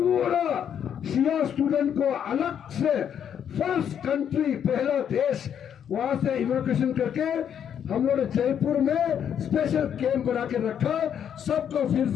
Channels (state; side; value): quieter; right; 8.8 dB